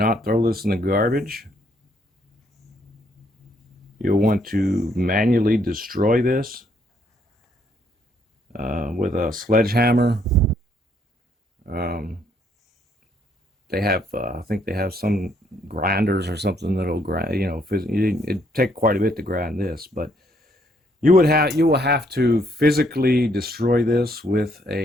throw this in the garbage. You'll want to manually destroy this with a sledgehammer. They have, I think they have some grinders or something that'll grind. It'd take quite a bit to grind this, but you will have to physically destroy this with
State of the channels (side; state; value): both; normal; correlation 0.69